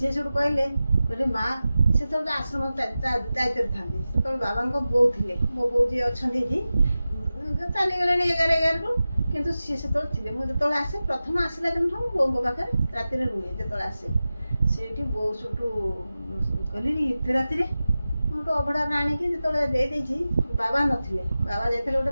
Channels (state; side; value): inverted; both; correlation -0.95